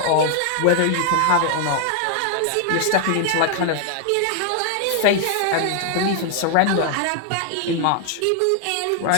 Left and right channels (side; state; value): both; different; correlation 0.00